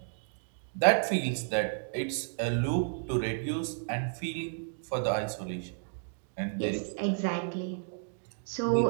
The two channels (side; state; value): left; silent; digital silence